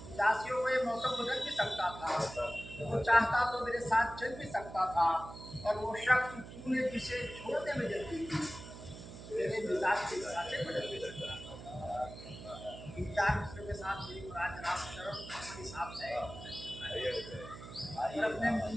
उदासियों का ये मौसम बदल भी सकता था, वो चाहता तो मेरे साथ चल भी सकता था, और वो शख्स तूने जिसे छोड़ने में जल्दी की, मेरे मिजाज के हिसाब से बदल भी सकता था। इन चार मिसरों के साथ मेरी मुराद जनाब शर्म अपने हिसाब से है, और अपने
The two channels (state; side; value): noise; right; hum, 13 dB below the sound